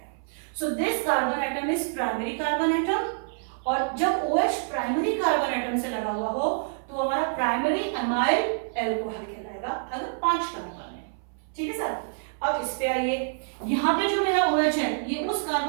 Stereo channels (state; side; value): silent; left; 58 dB below the other